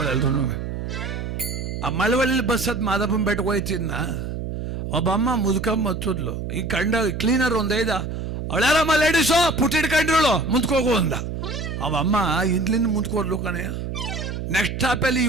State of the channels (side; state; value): right; noise; hum, 5 dB below the sound